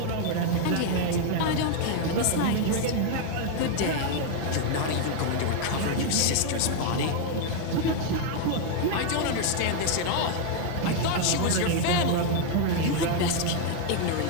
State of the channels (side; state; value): both; different; correlation 0.00